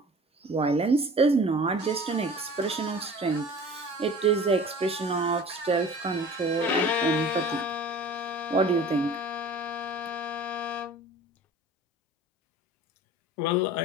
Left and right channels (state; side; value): normal; both; correlation 0.43